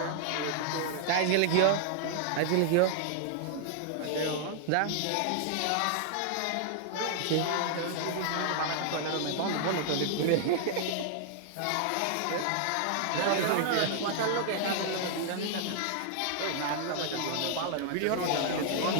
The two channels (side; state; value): both; different; correlation 0.00